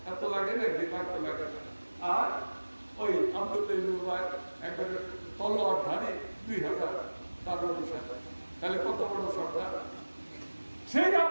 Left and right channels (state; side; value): inverted; both; correlation -1.00